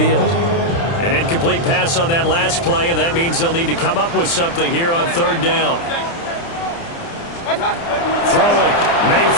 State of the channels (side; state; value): right; late; 29 ms